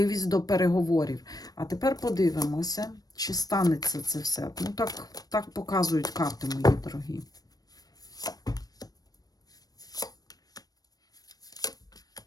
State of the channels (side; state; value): right; late; 0.18 ms